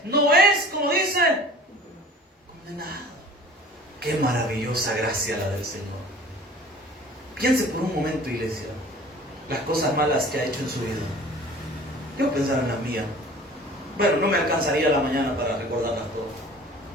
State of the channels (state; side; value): normal; both; correlation 0.45